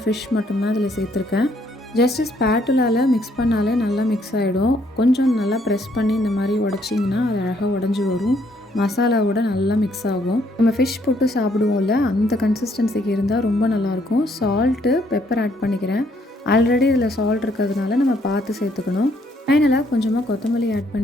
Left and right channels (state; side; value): normal; both; correlation 0.69